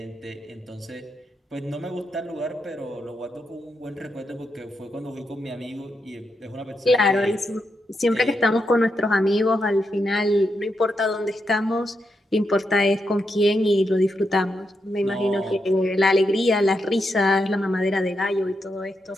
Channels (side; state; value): both; normal; correlation 0.84